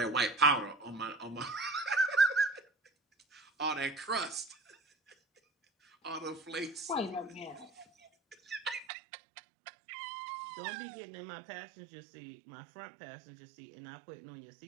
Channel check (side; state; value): left; drops out; at 8.8 s